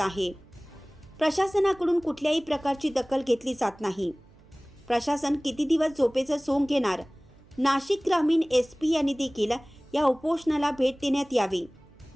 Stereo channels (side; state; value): right; noise; hum, 27 dB below the sound